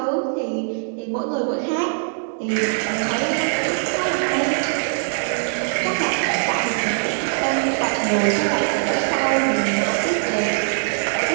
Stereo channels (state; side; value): silent; left; digital silence